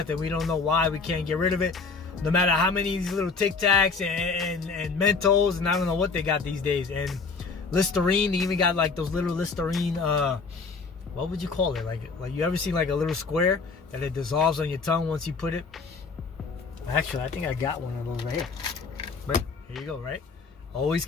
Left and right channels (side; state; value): right; quieter; 4.6 dB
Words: and we don't know why. We can't get rid of it, no matter how many of these little Tic Tacs and Mentos, and I don't know what they got these days, and Listerine. They even got like those little Listerine, what would you call it? Like you ever seen like a little square that it dissolves on your tongue once you put it? Actually, I think I got one of those right here. But here you go, right? Always